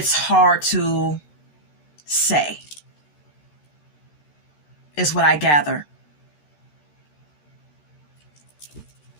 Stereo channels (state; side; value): late; right; 13 ms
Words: hard to say, is what I gather